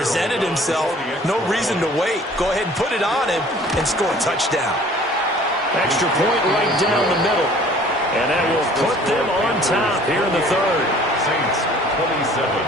himself. No reason to wait. Go ahead and put it on him and score a touchdown. Extra point right down the middle. And that will put them on top here in the third. Saints 27.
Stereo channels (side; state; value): both; normal; correlation 0.52